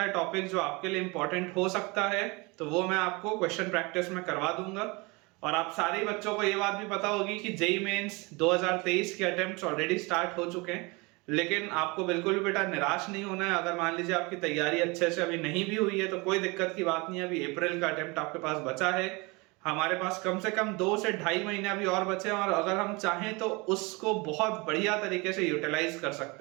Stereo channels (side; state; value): left; quieter; 26.5 dB